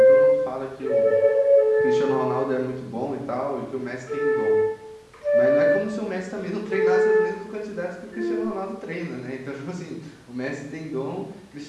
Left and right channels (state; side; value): identical; both; correlation 1.00